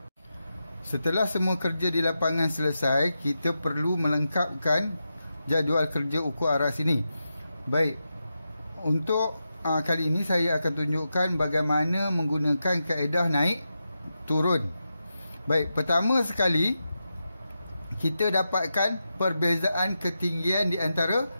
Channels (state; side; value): inverted; both; correlation -0.89